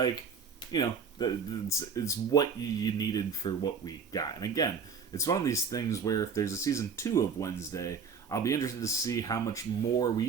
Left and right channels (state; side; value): quieter; left; 5.8 dB